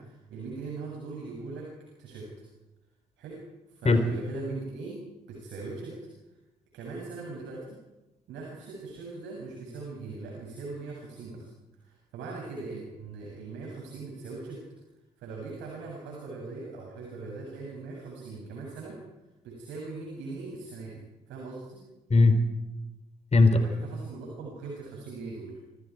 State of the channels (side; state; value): both; normal; correlation 0.83